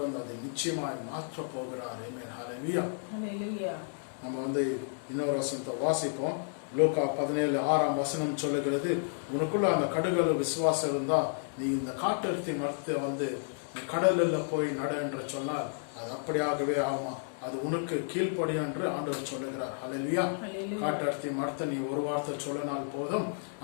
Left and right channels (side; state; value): right; silent; digital silence